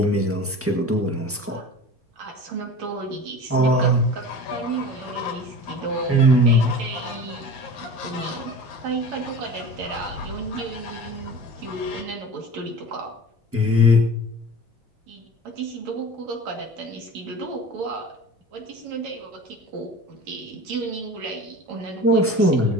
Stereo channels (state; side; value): normal; both; correlation 0.36